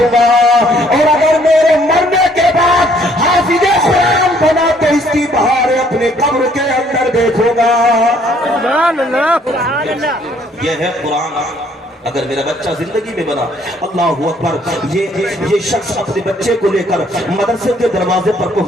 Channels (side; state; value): both; normal; correlation 0.63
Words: گا، اور اگر میرے مرنے کے بعد حافظ قرآن بنا تو اس کی بہار اپنے قبر کے اندر دیکھوں گا۔ یہ ہے قرآن۔ اگر میرا بچہ زندگی میں بنا، اللہ اکبر، یہ شخص اپنے بچے کو لے کر مدرسے کے دروازے پر